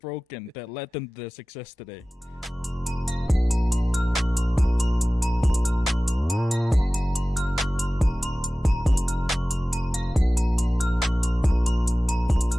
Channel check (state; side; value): normal; both; correlation 0.97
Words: that led them to their success today.